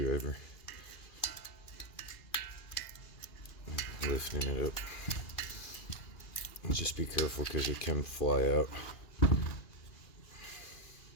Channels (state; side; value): late; right; 2.4 ms